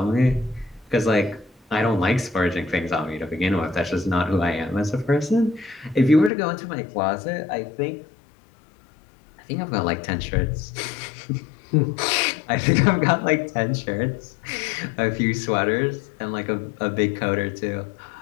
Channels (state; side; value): drops out; right; at 6.3 s